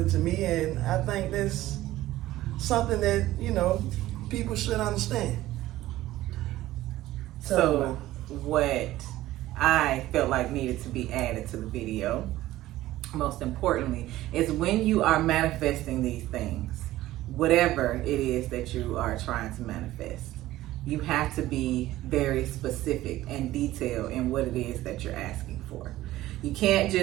to me, and I think that's something that, people should understand. So what I felt like needed to be added to the video, most importantly, is when you are manifesting these things, whatever it is that you are trying to manifest, you have to be very specific and detailed in what it is that you're asking for. You can't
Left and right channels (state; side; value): quieter; left; 15.7 dB